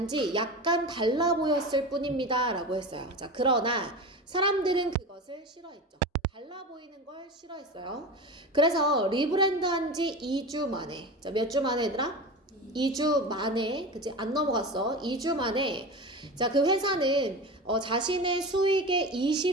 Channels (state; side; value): normal; both; correlation 0.28